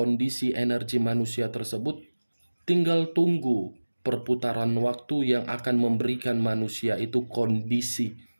energi manusia tersebut, tinggal tunggu perputaran waktu yang akan memberikan manusia itu kondisi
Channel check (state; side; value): inverted; both; correlation -1.00